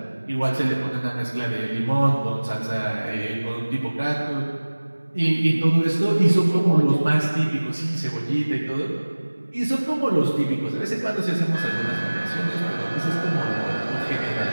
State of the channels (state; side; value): inverted; both; correlation -1.00